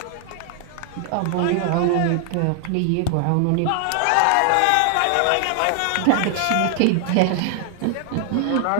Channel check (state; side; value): different; both; correlation 0.00